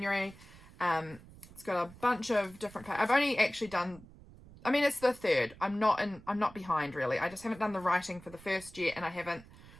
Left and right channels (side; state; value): right; noise; rumble, 20 dB below the sound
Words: It's got a bunch of different I've only actually done, I mean, it's the third. I'm not behind really. I just haven't done the writing for the first yet, and I haven't